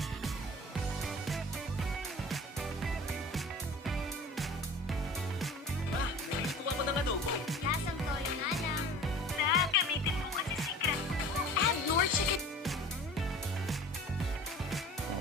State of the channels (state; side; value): normal; both; correlation 0.41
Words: Ma, nagluto ako ng adobo. Lasang toyo nga lang. Gamitin mo kasi secret ko. Add more chicken.